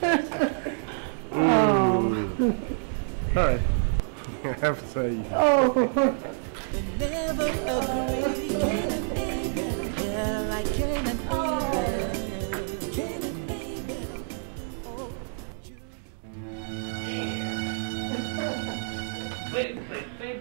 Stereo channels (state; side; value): silent; left; digital silence